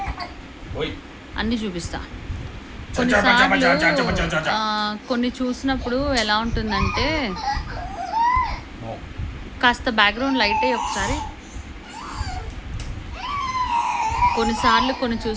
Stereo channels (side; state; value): both; identical; correlation 1.00